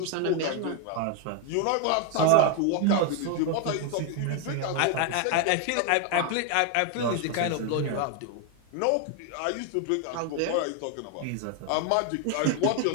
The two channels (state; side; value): different; both; correlation 0.01